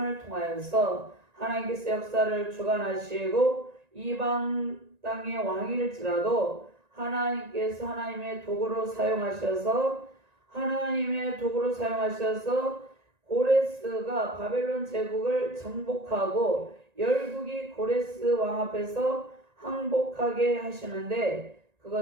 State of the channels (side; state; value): left; late; 1.9 ms